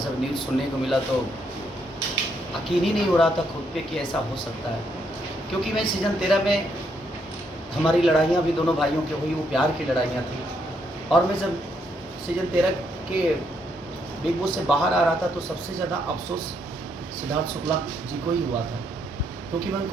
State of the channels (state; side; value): normal; both; correlation 0.75